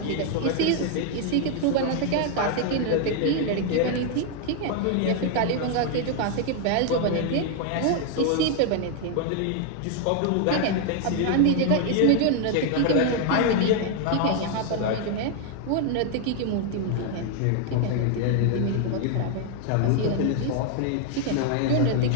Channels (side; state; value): both; different; correlation 0.00